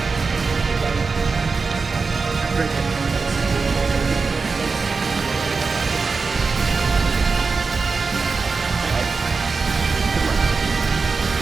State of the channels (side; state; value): left; quieter; 4.5 dB